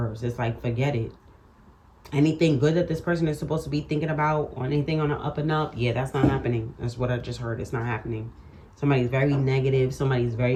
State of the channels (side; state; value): both; identical; correlation 1.00